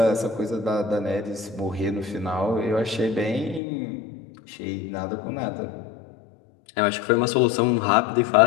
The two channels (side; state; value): right; drops out; at 3.6 s